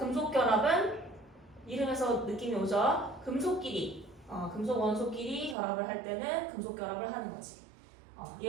결합은 이름에서 느낌이 오죠? 금속끼리, 금속 원소끼리 결합을 할 때는 금속 결합을 하는 거지.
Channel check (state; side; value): drops out; left; at 5.6 s